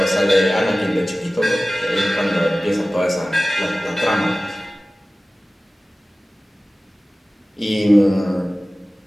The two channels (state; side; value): normal; both; correlation 0.97